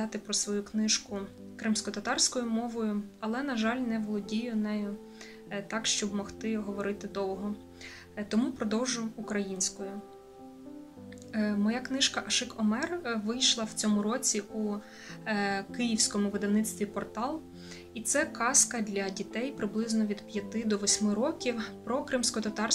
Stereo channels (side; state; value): both; identical; correlation 1.00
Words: про свою книжку кримсько-татарською мовою, але, на жаль, не володію нею так, щоб могти говорити довго. Тому продовжу українською. Моя книжка «Аших Омер» вийшла в цьому році у київському видавництві «Портал». І це казка для дітей приблизно від 5 до 8 років про